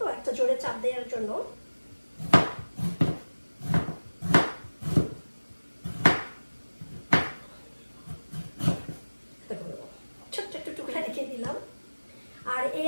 একটা জোরে চাপ দেওয়ার জন্য। ছোট্ট একটু টুকরা রেখে দিলাম। আর এই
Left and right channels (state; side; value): inverted; both; correlation -1.00